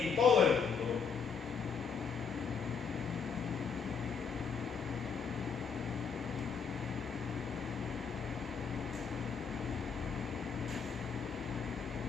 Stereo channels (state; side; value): quieter; right; 6.0 dB